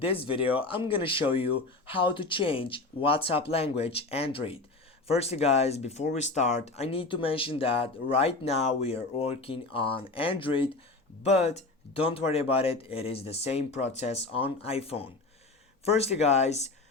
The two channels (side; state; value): right; quieter; 3.3 dB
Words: video I'm gonna show you how to change WhatsApp language Android. Firstly guys, before we start, I need to mention that right now we are working on Android, but don't worry about it, it is the same process on iPhone. Firstly guys,